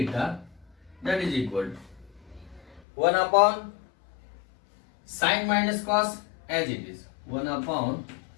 that is equal to 1 upon sin minus cos as it is, 1 upon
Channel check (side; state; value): right; drops out; at 2.8 s